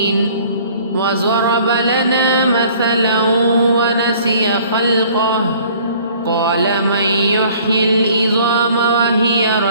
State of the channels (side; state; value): both; inverted; correlation -0.54